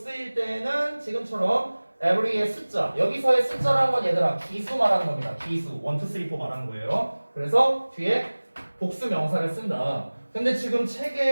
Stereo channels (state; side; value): inverted; both; correlation -1.00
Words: 때는 지금처럼 every의 숫자. 여기서의 숫자라는 건 얘들아 기수 말하는 겁니다. 기수. 1, 2, 3, 4 말하는 거예요. 그래서 뒤에 복수 명사를 쓴다. 근데 지금